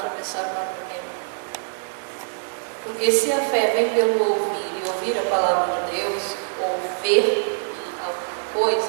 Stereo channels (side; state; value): left; silent; digital silence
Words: o mar vermelho. Porque se a fé vem pelo ouvir e ouvir a palavra de Deus, ou ver alguma